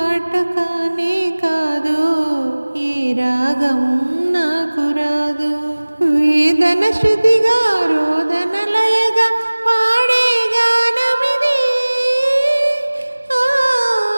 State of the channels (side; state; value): both; inverted; correlation -1.00